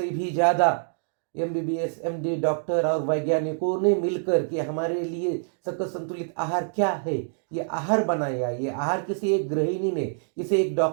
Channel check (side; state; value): left; silent; digital silence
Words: भी ज़्यादा एमबीबीएस, एमडी डॉक्टर और वैज्ञानिकों ने मिलकर के हमारे लिए सकल संतुलित आहार क्या है, ये आहार बनाया। ये आहार किसी एक गृहिणी ने, किसी एक